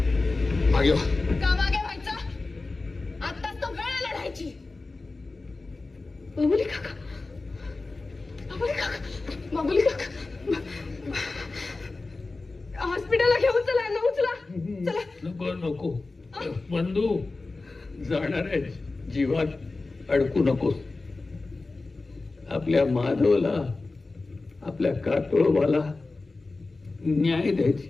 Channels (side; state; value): right; quieter; 3.5 dB